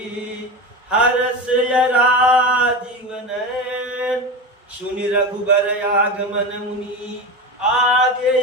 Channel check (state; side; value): normal; both; correlation 0.23